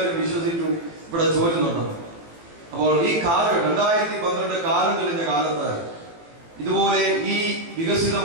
വിശ്വസിച്ചു ഇവിടെ ചോരുന്നുണ്ടെന്ന്. അപ്പോൾ ഈ കാലം 2012 കാലം തെളിഞ്ഞ കാലത്ത് ഇതുപോലെ ഈ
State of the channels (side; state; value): left; late; 18 ms